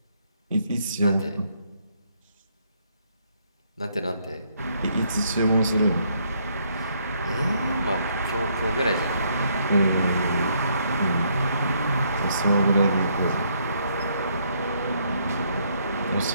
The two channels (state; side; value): inverted; both; correlation -0.71